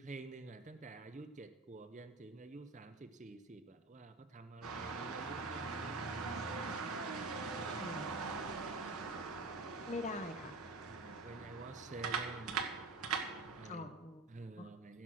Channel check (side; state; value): left; quieter; 3.3 dB